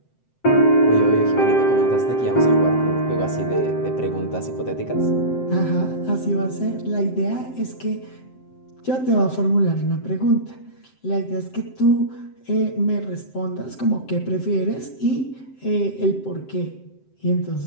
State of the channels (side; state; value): right; late; 7.7 ms